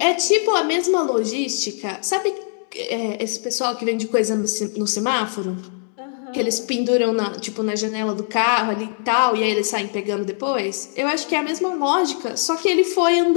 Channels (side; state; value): right; silent; digital silence